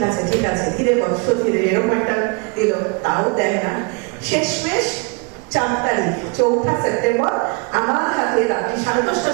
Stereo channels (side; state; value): left; quieter; 32.3 dB